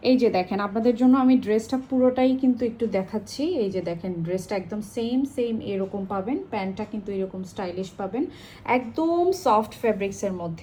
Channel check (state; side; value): identical; both; correlation 1.00